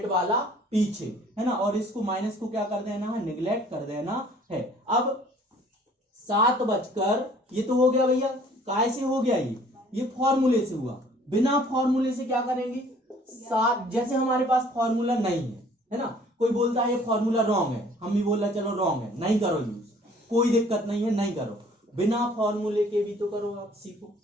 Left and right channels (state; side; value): normal; both; correlation 0.55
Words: वाला पीछे, है ना। और इसको माइनस को क्या कर देना है, निगलेक्ट कर देना है। अब 7 बजकर, ये तो हो गया भैया, काय से हो गया, ये फॉर्मूले से हुआ। बिना फॉर्मूले से क्या करेंगे, 7, जैसे हमारे पास फॉर्मूला नहीं है ना, कोई बोलता है ये फॉर्मूला रॉन्ग है, हम भी बोल रहे चलो रॉन्ग है, नहीं करो यूज, कोई दिक्कत नहीं है, नहीं करो। बिना फॉर्मूले के भी तो करो, आप सीखो,